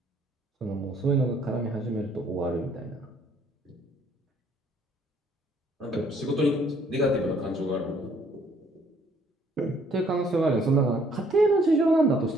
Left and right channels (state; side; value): normal; both; correlation 0.63